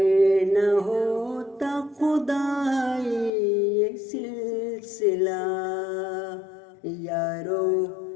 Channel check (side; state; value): right; drops out; at 3.3 s